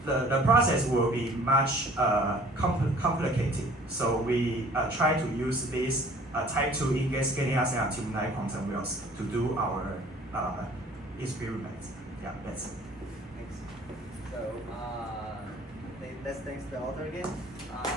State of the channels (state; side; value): normal; both; correlation 0.51